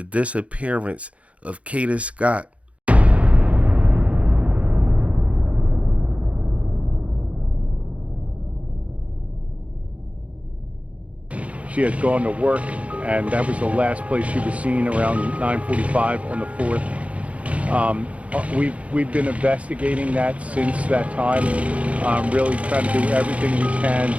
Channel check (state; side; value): late; left; 0.064 ms